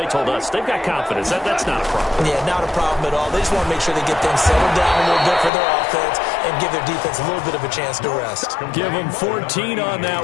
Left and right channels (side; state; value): right; drops out; at 5.5 s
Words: told us, they've got confidence. That's not a problem. Yeah, not a problem at all. They just want to make sure they get things settled down a little bit for their offense and give their defense a little bit of a chance to rest. Give them 14 on that